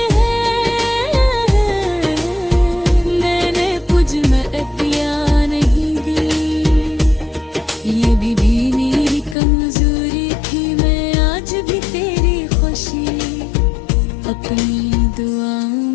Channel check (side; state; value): right; drops out; at 9.3 s